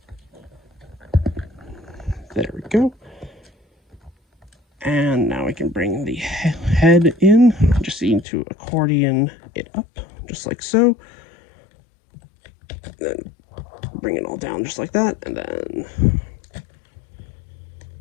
There we go. And now we can bring the head in. Just need to accordion it up, just like so. Then bring it all down just like that, and then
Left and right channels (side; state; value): right; drops out; at 8.2 s